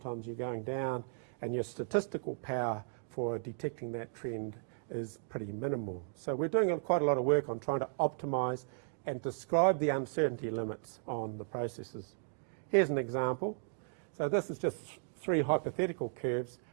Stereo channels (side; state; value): left; silent; digital silence